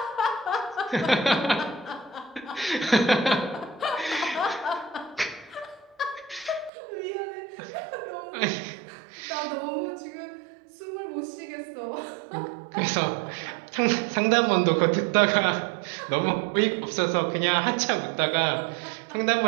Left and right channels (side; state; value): left; drops out; at 6.7 s